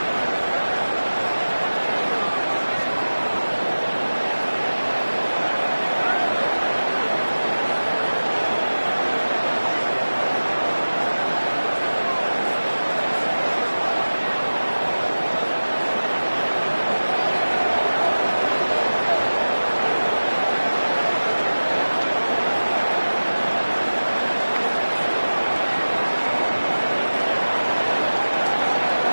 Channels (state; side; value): inverted; both; correlation -1.00